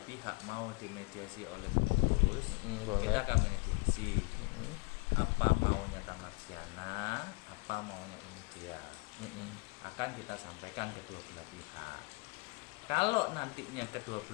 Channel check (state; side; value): quieter; right; 29.5 dB